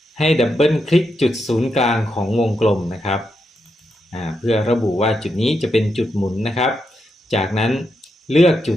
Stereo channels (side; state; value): both; normal; correlation 0.83